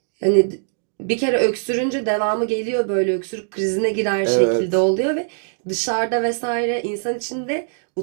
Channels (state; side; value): silent; left; digital silence